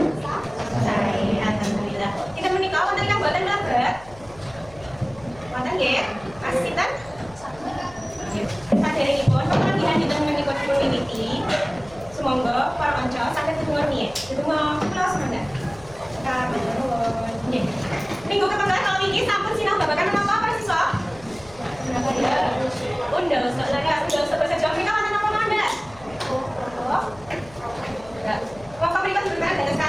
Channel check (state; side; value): noise; left; hum, 22 dB below the sound